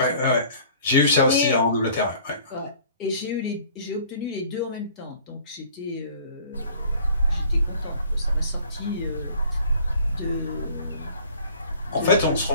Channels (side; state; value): both; inverted; correlation -0.51